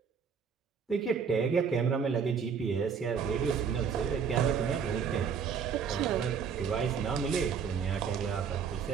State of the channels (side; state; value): left; quieter; 6.6 dB